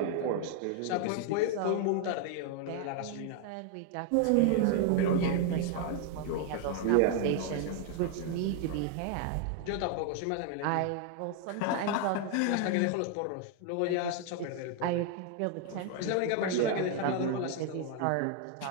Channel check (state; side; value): different; both; correlation 0.00